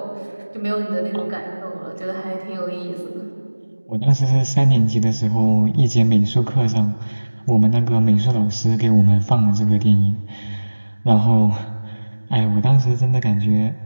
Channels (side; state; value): both; inverted; correlation -1.00